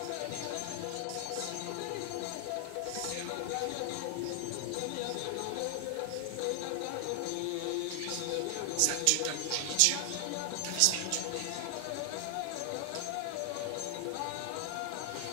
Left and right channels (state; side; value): different; both; correlation 0.00